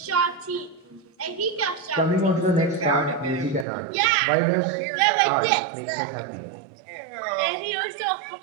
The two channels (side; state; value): left; drops out; at 3.7 s